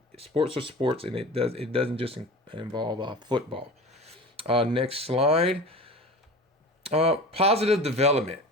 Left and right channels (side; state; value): both; normal; correlation 0.35